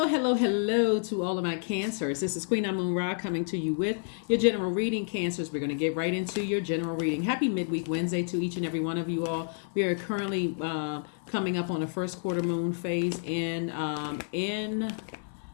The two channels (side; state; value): right; silent; 58 dB below the other